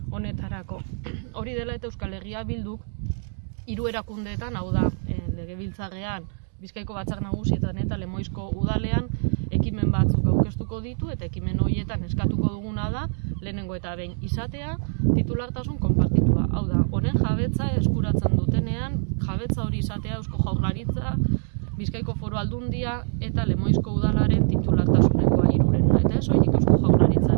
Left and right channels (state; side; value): silent; left; 62 dB below the other